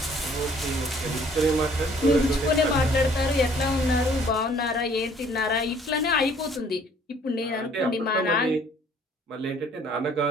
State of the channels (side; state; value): both; normal; correlation 0.58